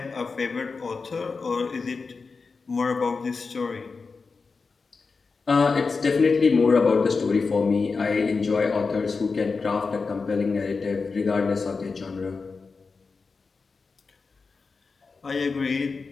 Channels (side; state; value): right; quieter; 4.5 dB